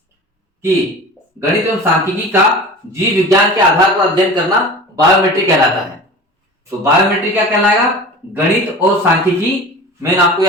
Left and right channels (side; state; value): both; normal; correlation 0.36